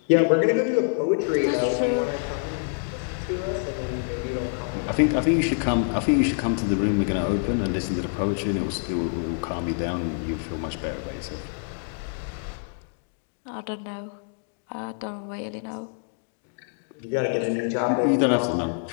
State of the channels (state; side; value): silent; right; 57 dB below the other